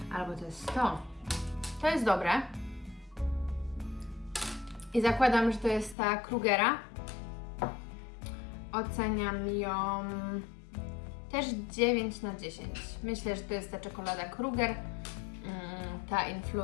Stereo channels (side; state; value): right; drops out; at 6.0 s